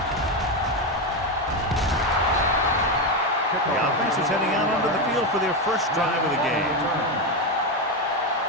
The offense is heading out onto the field for their first drive of the game.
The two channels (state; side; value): normal; both; correlation 0.11